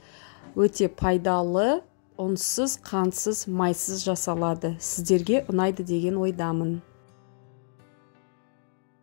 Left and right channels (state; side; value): silent; right; digital silence